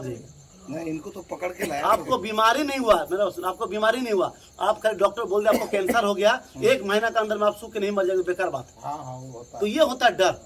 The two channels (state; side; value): identical; both; correlation 1.00